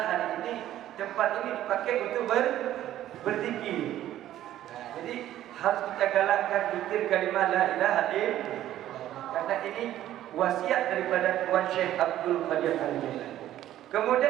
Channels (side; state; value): left; quieter; 12.8 dB